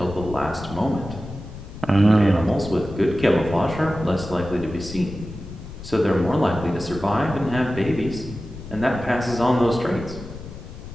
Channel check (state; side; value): noise; left; rumble, 12 dB below the sound